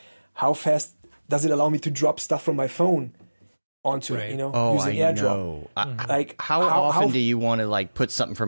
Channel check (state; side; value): inverted; both; correlation -1.00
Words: how fast does it allow me to drop stuff from my phone onto it, using AirDrop. Like how often do you want to like put something